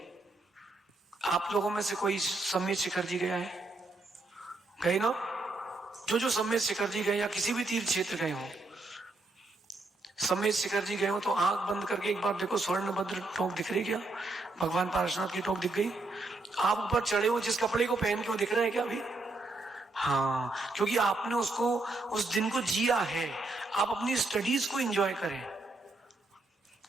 आप लोगों में से कोई समेत शिखर जी गया है? गए ना? जो समेत शिखर जी गए या किसी भी तीर्थ क्षेत्र गए हो, समेत शिखर जी गए हो, तो आंख बंद करके एक बार देखो, स्वर्णभद्र टोक दिख रही क्या? भगवान पार्श्वनाथ की टोक दिख गई? आप ऊपर चढ़े हो जिस कपड़े को पहन के, वो दिख रहा है क्या अभी? हाँ, क्योंकि आपने उसको, उस दिन को जिया है। आप अपनी स्टडीज को एंजॉय करें।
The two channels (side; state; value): left; quieter; 3.1 dB